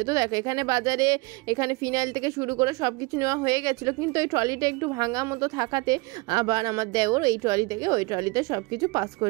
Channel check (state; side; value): quieter; left; 26.0 dB